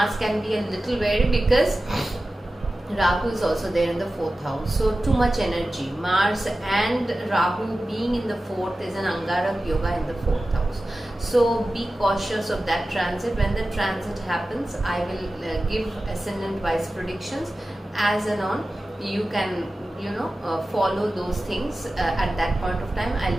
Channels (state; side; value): normal; both; correlation 0.95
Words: can be a little wary because Rahu is also there in the 4th house. So too much energy. Mars and Rahu being in the 4th is an Angarak yoga in the 4th house. So be cautious of that transit. When the transit happens, I will give ascendant wise predictions as and on. You can follow those things at that point of time.